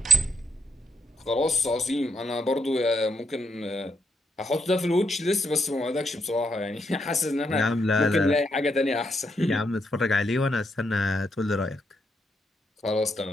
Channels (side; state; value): both; normal; correlation 0.80